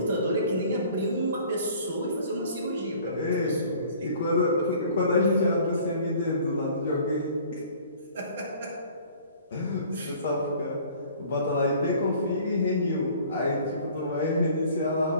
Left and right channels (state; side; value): inverted; both; correlation -0.51